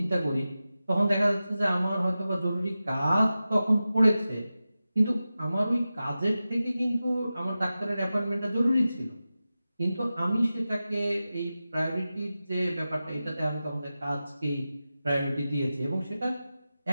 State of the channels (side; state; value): both; inverted; correlation -0.94